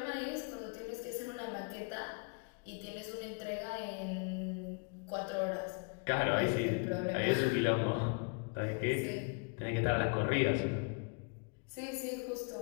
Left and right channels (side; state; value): right; quieter; 36.8 dB